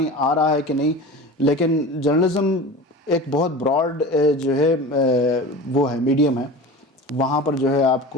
آ رہا ہے کہ نہیں, لیکن جرنلزم ایک بہت براڈ جو ہے وہ ہے میڈیم ہے. وہاں پر جو ہے آپ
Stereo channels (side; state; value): both; normal; correlation 0.34